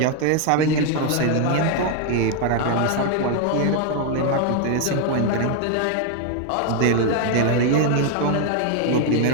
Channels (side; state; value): both; different; correlation 0.01